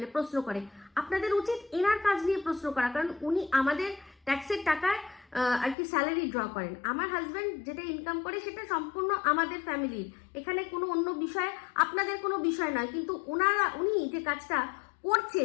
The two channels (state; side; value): drops out; right; at 5.8 s